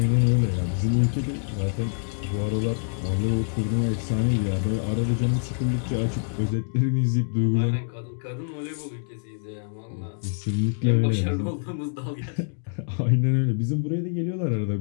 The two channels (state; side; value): silent; right; digital silence